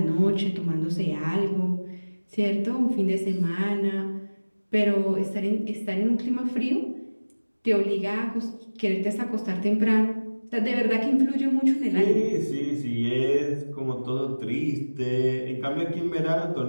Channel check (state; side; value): inverted; both; correlation -1.00